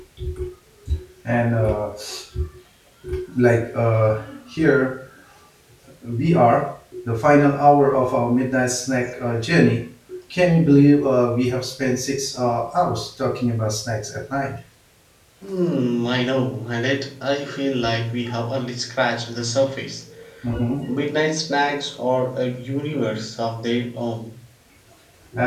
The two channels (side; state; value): both; identical; correlation 1.00